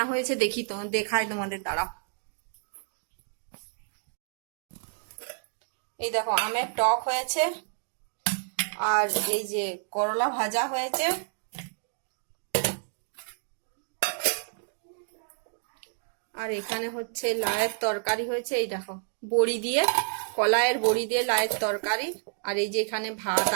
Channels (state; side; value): silent; left; digital silence